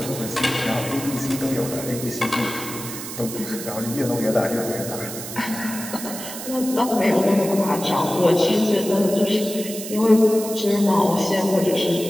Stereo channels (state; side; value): noise; right; hiss, 9 dB below the sound